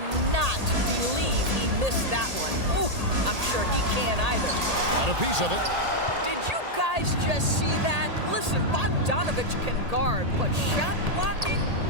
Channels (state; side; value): late; left; 1.8 ms